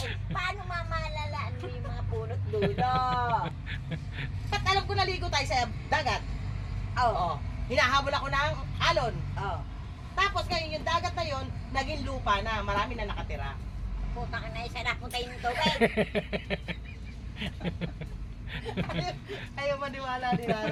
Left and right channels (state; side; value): identical; both; correlation 1.00